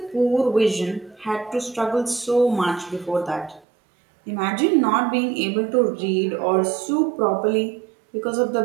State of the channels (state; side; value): drops out; left; at 3.6 s